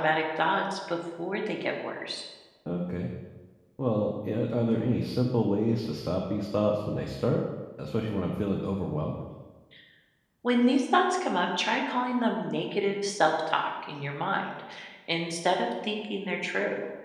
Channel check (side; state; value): both; identical; correlation 1.00